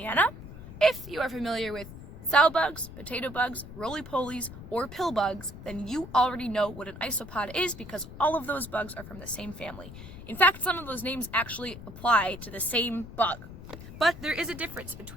If you are familiar with sow bugs, potato bugs, roly-polies, or pill bugs, then you already know what an isopod is because all of those bugs are from the same family. In fact, some of those names actually apply to the same bug. But there is a difference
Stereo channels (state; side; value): noise; left; rumble, 13 dB below the sound